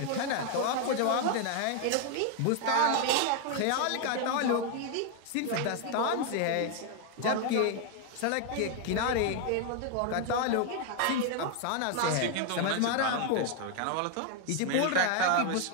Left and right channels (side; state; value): both; different; correlation 0.01